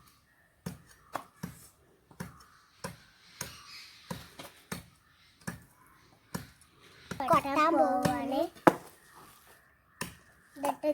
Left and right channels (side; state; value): both; identical; correlation 1.00